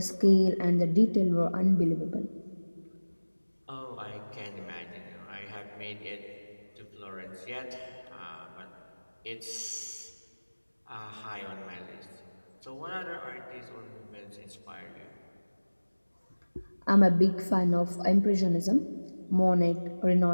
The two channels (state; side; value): inverted; both; correlation -1.00